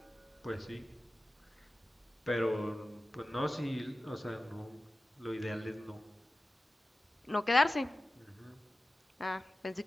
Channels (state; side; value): normal; both; correlation 0.95